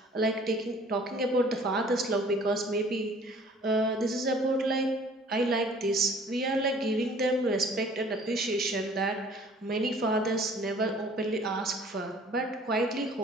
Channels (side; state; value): both; normal; correlation 0.52